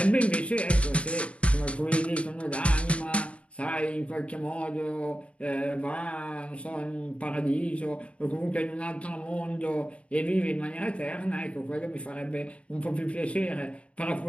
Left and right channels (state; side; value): late; right; 0.062 ms